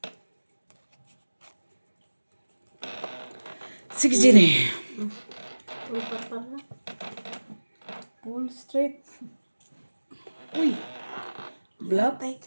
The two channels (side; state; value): both; inverted; correlation -1.00